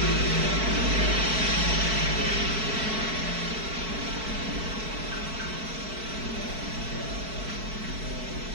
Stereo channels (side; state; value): left; late; 4.6 ms